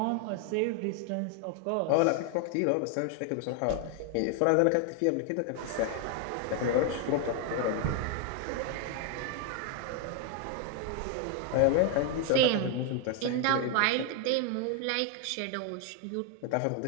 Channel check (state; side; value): different; both; correlation 0.01